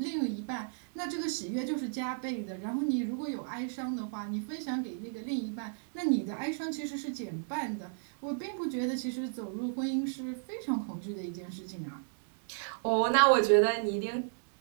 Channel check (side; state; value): left; silent; digital silence